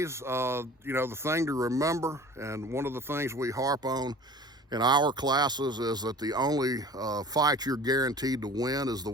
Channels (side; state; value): both; normal; correlation 0.42